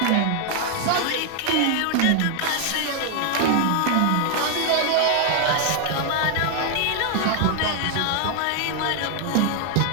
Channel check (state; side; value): different; both; correlation 0.00